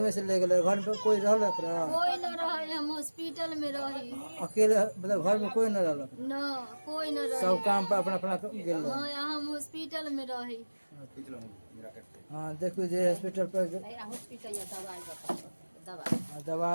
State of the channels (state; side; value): inverted; both; correlation -1.00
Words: से ले गए घर में कोई रहलक रहा कोई न रहे हम हॉस्पिटल में रही। अकेले मतलब घर में कोई न रहलक न कोई न रहे सब काम पर अपना अपना गेल रहे। हाँ हम हॉस्पिटल में रही। हाँ देखो जे हॉस्पिटल पर दवा